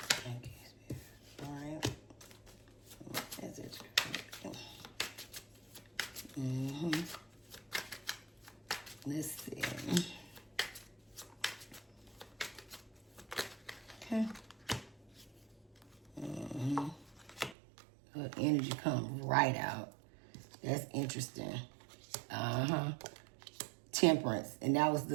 see. Let's see. Okay. Her energy comes right out. That's interesting. Temperance, and that was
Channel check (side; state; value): left; drops out; at 17.6 s